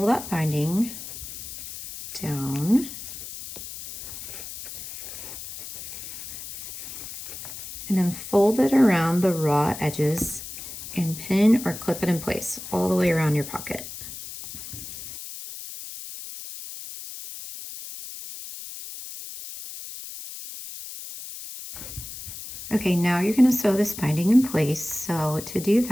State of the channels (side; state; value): left; noise; hiss, 11 dB below the sound